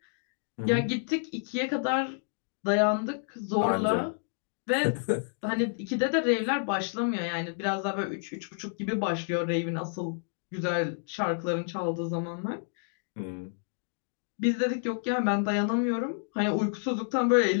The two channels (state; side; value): silent; right; digital silence